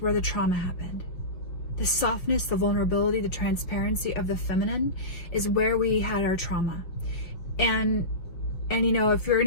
where the trauma happened. The softness, the vulnerability, the transparency of the feminine is where we had our trauma. And if you're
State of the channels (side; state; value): right; late; 5.7 ms